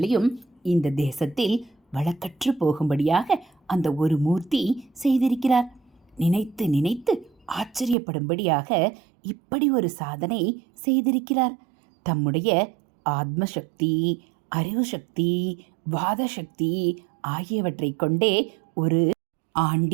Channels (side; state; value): left; drops out; at 8.0 s